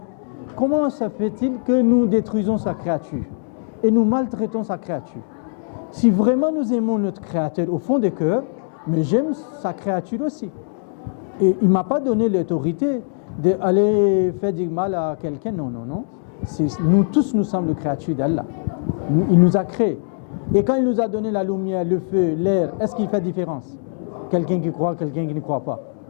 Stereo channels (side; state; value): right; silent; digital silence